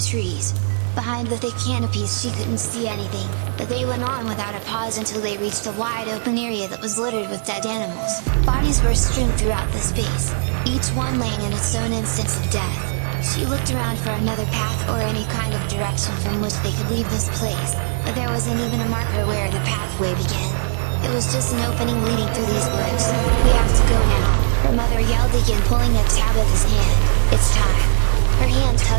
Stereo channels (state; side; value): silent; left; digital silence